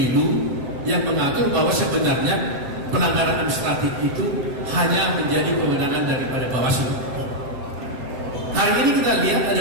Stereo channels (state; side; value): late; left; 7.7 ms